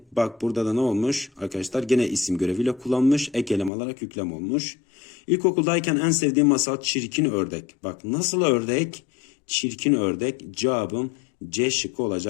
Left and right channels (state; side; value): drops out; right; at 3.7 s